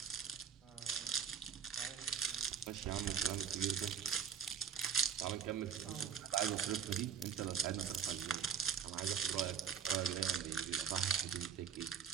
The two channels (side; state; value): left; quieter; 7.4 dB